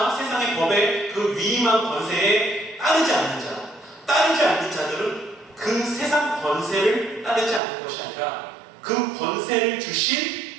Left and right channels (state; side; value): drops out; left; at 7.6 s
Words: 세상의 법의 그 위임한 권세에 따르지 않는 자, 따르지 않는 자들은 그 세상 권세를 따르지 않는 것이 아니라 그 권세를 주신